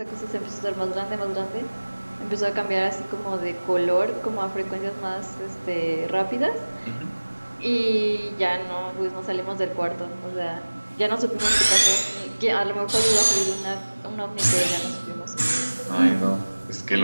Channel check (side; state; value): both; inverted; correlation -1.00